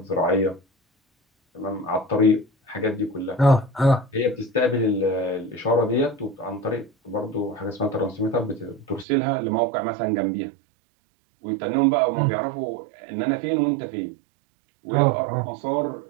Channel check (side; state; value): left; drops out; at 9.1 s